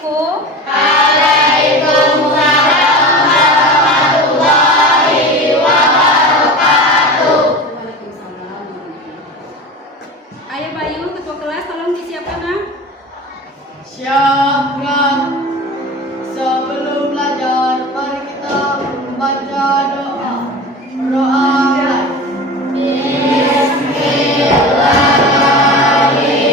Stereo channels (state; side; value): normal; both; correlation 0.32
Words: Waalaikumsalam warahmatullahi wabarakatuh. Waalaikumsalam. Ayah Bayu, ketua kelas, tolong disiapkan, Nak. Siapkan. Sebelum belajar, mari kita membaca doa. Doa.